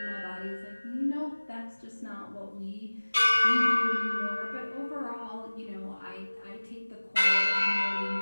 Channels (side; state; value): both; inverted; correlation -1.00